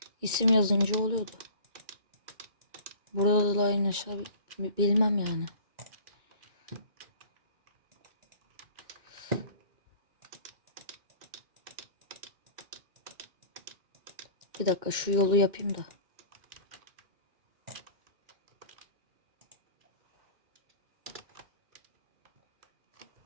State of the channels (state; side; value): late; left; 2.2 ms